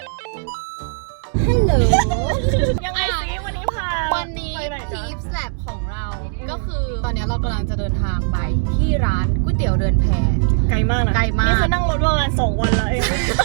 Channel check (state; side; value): silent; left; digital silence